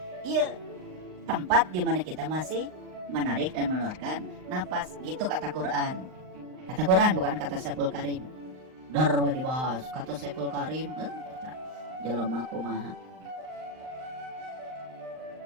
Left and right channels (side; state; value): left; late; 39 ms